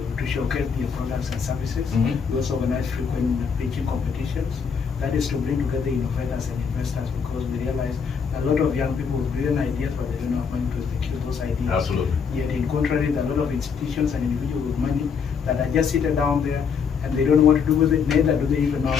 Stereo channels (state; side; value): quieter; right; 6.2 dB